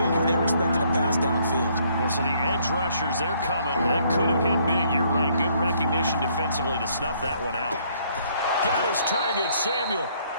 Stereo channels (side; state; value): both; inverted; correlation -0.66